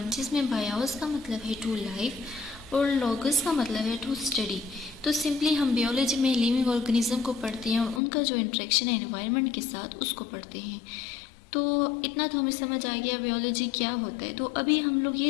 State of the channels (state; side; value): drops out; right; at 8.0 s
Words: जिसमें बायोस का मतलब है टू लाइफ और लोगस का मतलब है टू स्टडी। तो सिंपली हम बियोलॉजी में लिविंग ऑर्गेनिज्म को पढ़ते हैं और उनका जो इंटरेक्शन है एनवायरनमेंट के साथ उसको पढ़ते हैं। तो इतना तो हमें समझ आ गया बियोलॉजी क्या होता है। तो अभी हम लोग